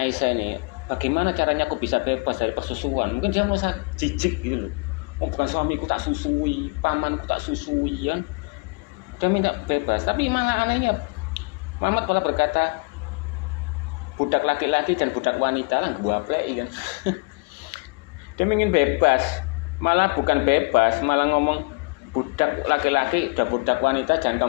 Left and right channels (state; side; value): quieter; right; 29.9 dB